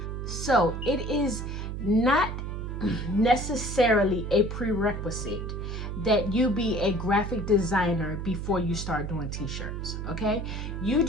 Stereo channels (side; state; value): right; noise; hum, 5 dB below the sound